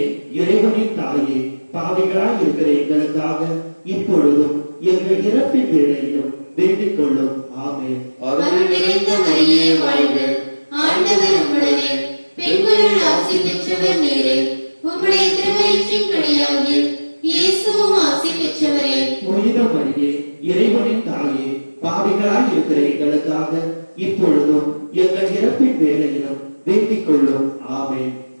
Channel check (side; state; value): both; inverted; correlation -1.00